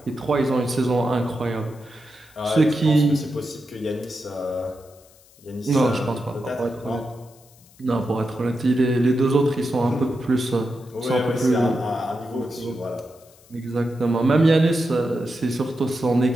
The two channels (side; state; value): left; noise; hiss, 27 dB below the sound